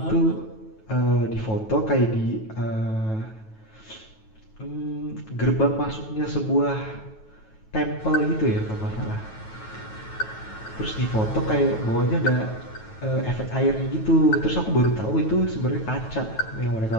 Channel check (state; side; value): late; right; 9.2 ms